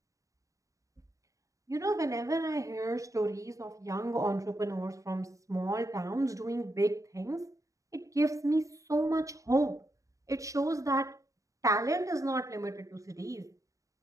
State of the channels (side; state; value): left; late; 0.16 ms